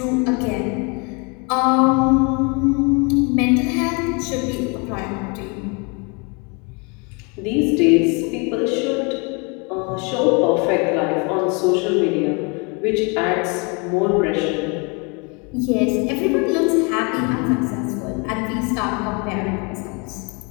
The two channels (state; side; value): quieter; right; 32.2 dB